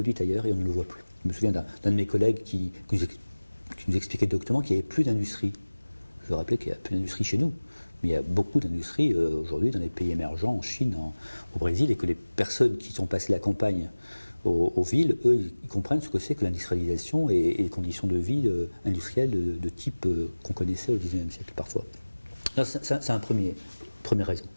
ailleurs et on ne le voit plus. Je me souviens d'un de mes collègues qui nous expliquait doctement qu'il n'y avait plus d'industrie. Je veux rappeler qu'il n'y a plus d'industrie chez nous, mais il y a beaucoup d'industries aujourd'hui dans les pays émergents, en Chine, au Brésil, et que les personnes qui sont passées la campagne aux villes, eux, ils comprennent ce que c'est que l'industrialisation et les conditions de vie industrielles de type qu'on connaissait au XIXe siècle parfois. C'est un première raison.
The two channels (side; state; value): both; inverted; correlation -1.00